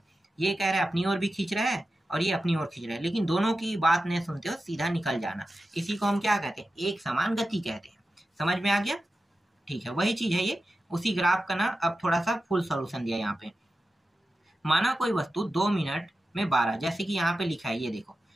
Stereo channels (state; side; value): normal; both; correlation 0.92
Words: ये कह रहा है अपनी ओर भी खींच रहा है और ये अपनी ओर खींच रहा है, लेकिन दोनों की बात नहीं सुनते हो, सीधा निकल जाना, इसी को हम क्या कहते हैं, एक समान गति कहते हैं। समझ में आ गया। ठीक है, वही चीज है ये, उसी ग्राफ का ना अब थोड़ा सा फुल सॉल्यूशन दिया यहाँ पे। माना कोई वस्तु 2 मिनट में 12, जैसे कि यहाँ पे लिखा है ये देखो।